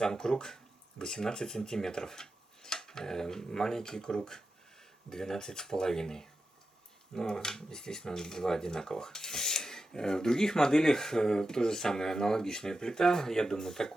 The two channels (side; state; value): both; normal; correlation 0.91